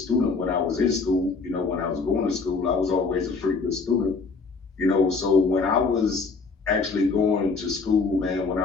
when I was in school. When I was going to school, I was always a pretty good student, so when I was actually going to school, man, when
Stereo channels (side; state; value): right; quieter; 4.4 dB